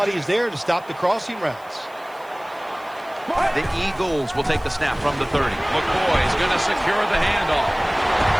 is there to stop the crossing routes. The Eagles will take the snap from the 30. McCoy is going to secure the handoff.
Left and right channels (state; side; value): noise; right; hiss, 28 dB below the sound